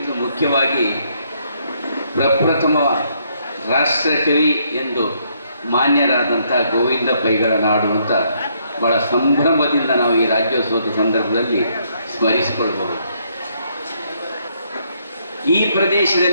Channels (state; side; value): inverted; both; correlation -0.71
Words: ಮುಖ್ಯವಾಗಿ ಪ್ರಪ್ರಥಮ ರಾಷ್ಟ್ರಕವಿ ಎಂದು ಮಾನ್ಯರಾದಂಥ ಗೋವಿಂದ ಪೈಗಳ ನಾಡು ಅಂತ ಭಾಳ ಸಂಭ್ರಮದಿಂದ ನಾವು ಈ ರಾಜ್ಯೋತ್ಸವದ ಸಂದರ್ಭದಲ್ಲಿ ಸ್ಮರಿಸಿಕೊಳ್ಬಹುದು. ಈ